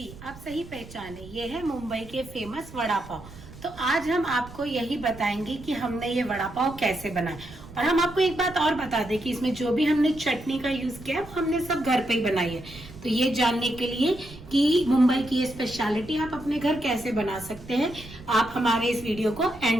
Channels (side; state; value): right; noise; rumble, 17 dB below the sound